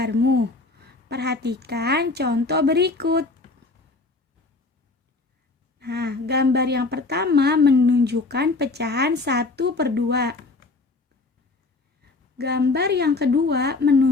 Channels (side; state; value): right; quieter; 3.5 dB